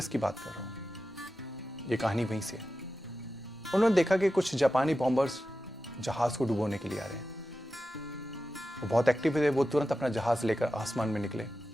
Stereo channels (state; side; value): normal; both; correlation 0.92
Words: की बात कर रहा हूँ, ये कहानी वहीं से है। उन्होंने देखा कि कुछ जापानी बॉम्बर्स जहाज को डुबोने के लिए आ रहे हैं। वो बहुत एक्टिव थे। वो तुरंत अपना जहाज लेकर आसमान में निकले, और